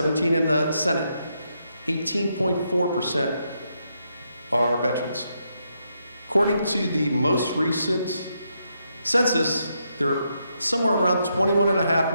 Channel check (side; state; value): both; inverted; correlation -0.80